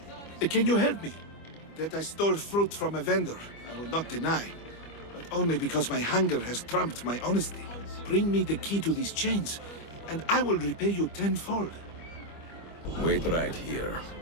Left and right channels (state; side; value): late; right; 25 ms